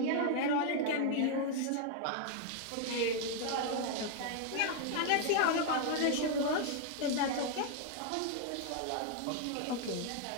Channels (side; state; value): both; different; correlation 0.00